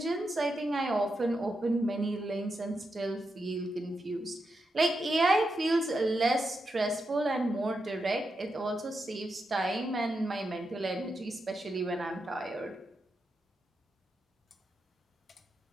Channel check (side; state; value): both; normal; correlation 0.86